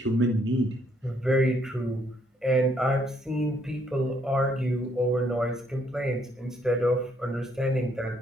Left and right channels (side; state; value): both; normal; correlation 0.69